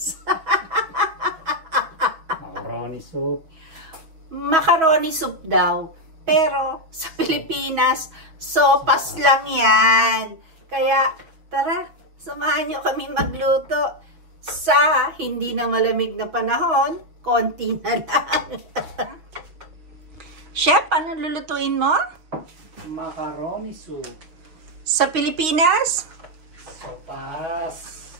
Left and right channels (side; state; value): left; late; 6.3 ms